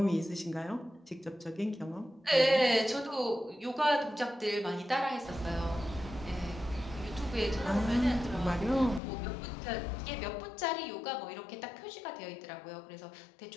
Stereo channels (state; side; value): drops out; right; at 9.0 s